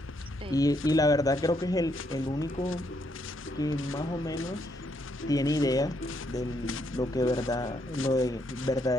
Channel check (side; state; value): both; normal; correlation 0.74